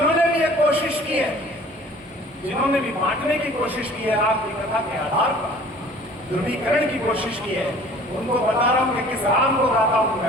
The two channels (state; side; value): normal; both; correlation 0.50